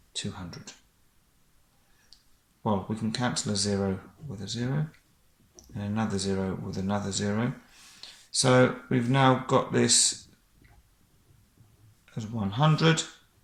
200. Well, we can cancel a 0 with a 0, and another 0 with another 0. So we've now got this as 100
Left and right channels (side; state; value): both; identical; correlation 1.00